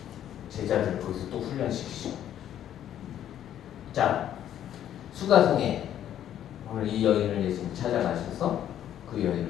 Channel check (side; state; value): right; quieter; 10.9 dB